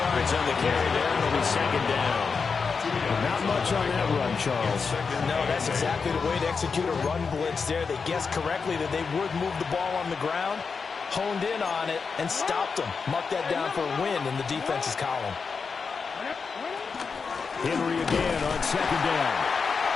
on the carry there. It'll be second down. Not much on that run, Charles. No, that's exactly the way to execute a run blitz there. They guessed correctly that they would move the ball on the ground, honed in on it, and stopped them. Mark that down for a win in the defense's column. Henry again on second down.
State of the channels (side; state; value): right; quieter; 5.3 dB